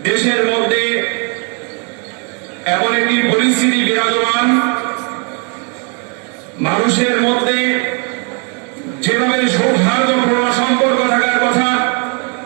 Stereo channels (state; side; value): quieter; left; 37.5 dB